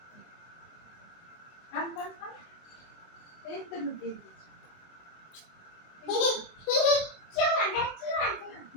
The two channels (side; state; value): right; late; 24 ms